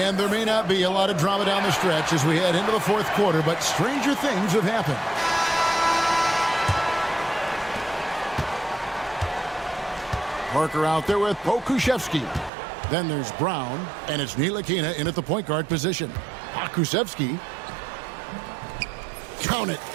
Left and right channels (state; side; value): drops out; left; at 12.5 s